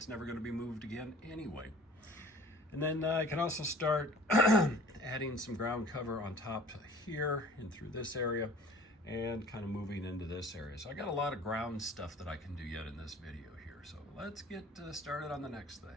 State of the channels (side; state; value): both; normal; correlation 0.48